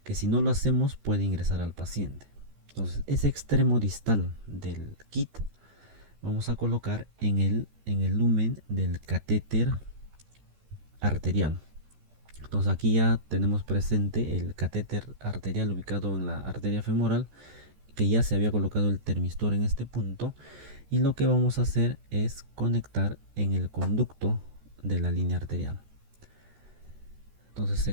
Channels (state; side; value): late; left; 14 ms